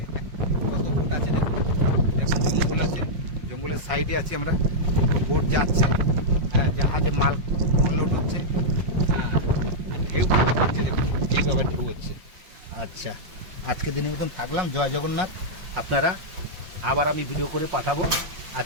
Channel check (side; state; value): left; late; 5.7 ms